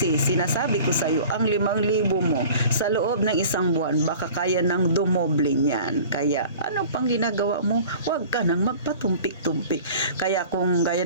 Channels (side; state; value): both; inverted; correlation -0.43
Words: sinasabi ko sa iyo, ang 5,000 mo sa loob ng isang buwan, baka kaya nang dumoble niyan. Kaya, ano pang ginagawa mo? Huwag ka nang magpatumpik-tumpik. Kaya kung